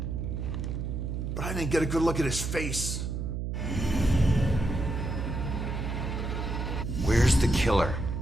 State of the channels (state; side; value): noise; right; hum, 3 dB below the sound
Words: But I didn't get a good look at his face. Where's the killer?